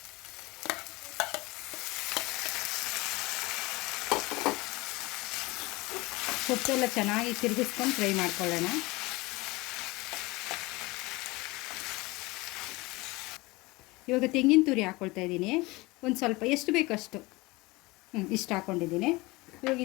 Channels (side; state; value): right; quieter; 22.7 dB